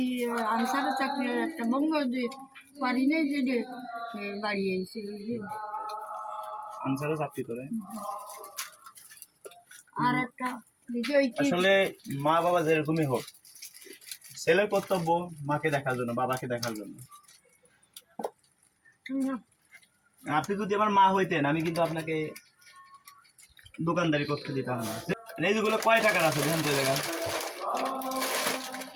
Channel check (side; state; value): both; identical; correlation 1.00